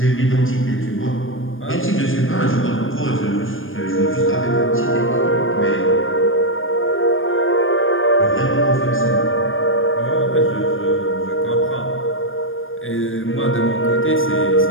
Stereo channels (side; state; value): right; late; 0.59 ms